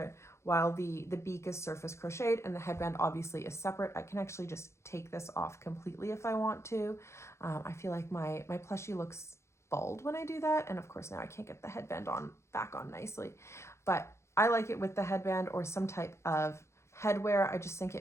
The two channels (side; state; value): right; late; 0.13 ms